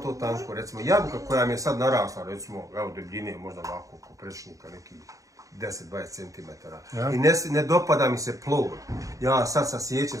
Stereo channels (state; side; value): late; left; 0.16 ms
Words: tanko, recimo jabuka koja mi je sad narasla, recimo, evo debljine, možda ovako, oko prečnika, nekih 10-20 cm. I ne dopada mi se plod. Ja sad sasjećem